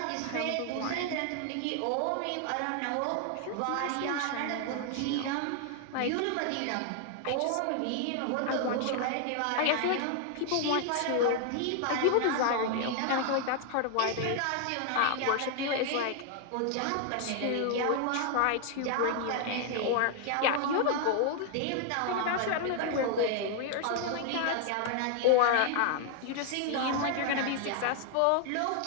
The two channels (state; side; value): different; both; correlation 0.00